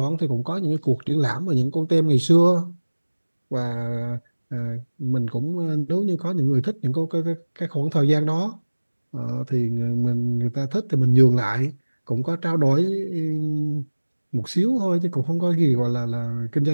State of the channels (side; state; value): both; inverted; correlation -1.00